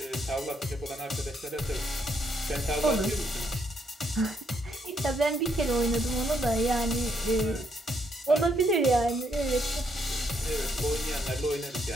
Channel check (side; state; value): both; normal; correlation 0.74